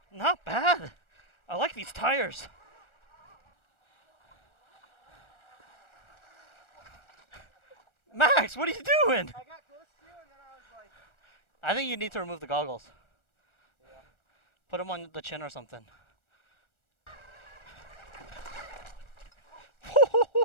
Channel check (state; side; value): late; right; 1.4 ms